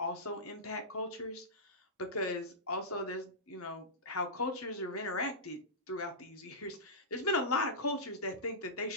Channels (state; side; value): normal; both; correlation -0.17